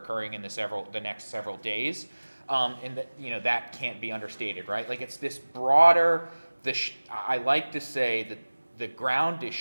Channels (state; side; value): inverted; both; correlation -1.00